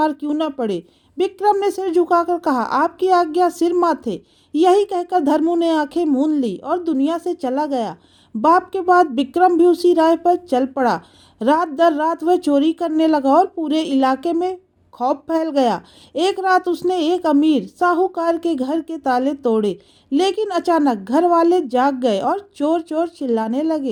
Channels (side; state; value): both; identical; correlation 1.00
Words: क्यों ना पड़े। विक्रम ने सिर झुकाकर कहा, आपकी आज्ञा सिर माथे। यही कहकर धर्मू ने आंखें मूंद ली और दुनिया से चला गया। बाप के बाद विक्रम भी उसी राह पर चल पड़ा। रात दर रात वह चोरी करने लगा और पूरे इलाके में खौफ फैल गया। एक रात उसने एक अमीर साहूकार के घर के ताले तोड़े, लेकिन अचानक घर वाले जाग गए और चोर चोर चिल्लाने